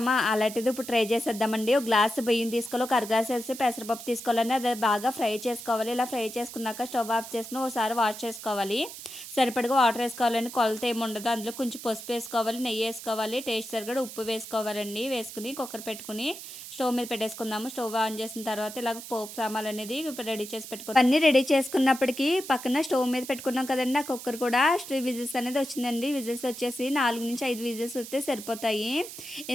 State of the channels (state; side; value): noise; right; hiss, 12 dB below the sound